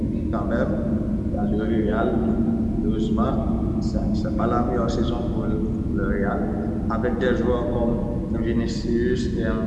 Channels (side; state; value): both; identical; correlation 1.00